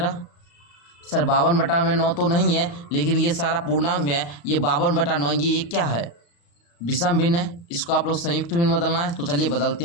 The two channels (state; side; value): late; right; 35 ms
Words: सर 52/9 तो नहीं है, लेकिन ये सारा पूर्णांक में है, ये 52/9, ये क्या है विषम भिन्न है, इसको आप लोग संयुक्त भिन्न बदलना है। तो चलिए बदलते